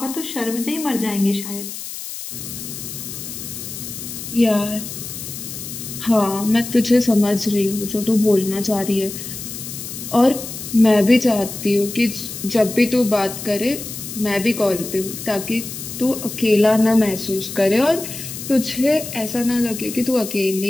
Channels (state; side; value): noise; left; hiss, 9 dB below the sound